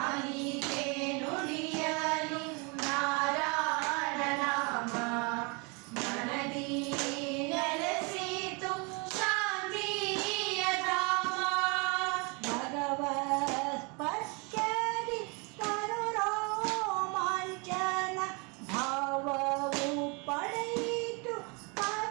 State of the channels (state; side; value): quieter; left; 31.1 dB